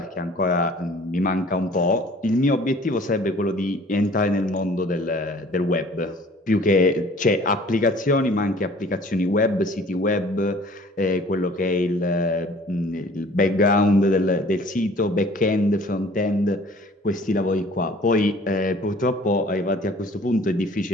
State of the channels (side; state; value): both; normal; correlation 0.51